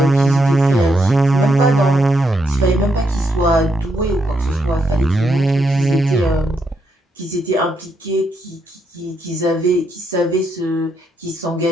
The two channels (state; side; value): normal; both; correlation 0.79